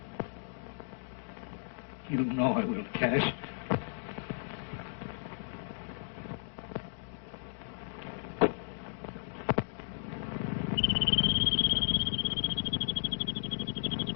You know I will, Cash.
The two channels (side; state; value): right; silent; digital silence